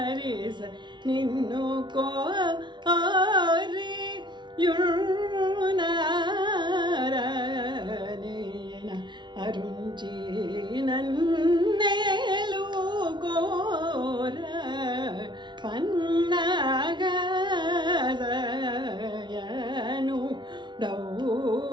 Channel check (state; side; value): late; left; 0.22 ms